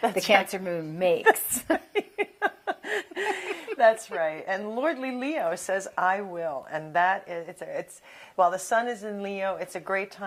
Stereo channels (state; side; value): identical; both; correlation 1.00